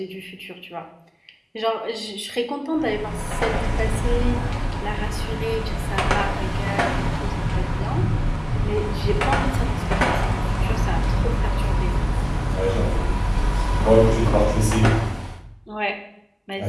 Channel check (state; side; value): identical; both; correlation 1.00